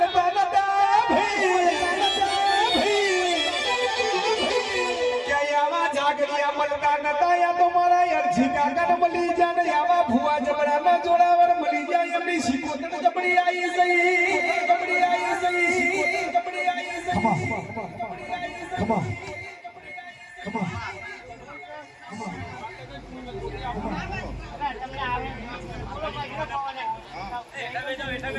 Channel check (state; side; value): identical; both; correlation 1.00